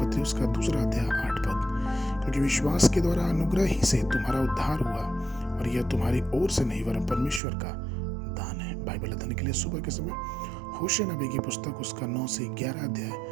उसका 2 अध्याय 8 पद, क्योंकि विश्वास के द्वारा अनुग्रह ही से तुम्हारा उद्धार हुआ और यह तुम्हारी ओर से नहीं वरन परमेश्वर का दान है। बाइबल अध्ययन के लिए सुबह के समय होशे नबी की पुस्तक उसका 9 से 11 अध्याय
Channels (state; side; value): drops out; left; at 7.4 s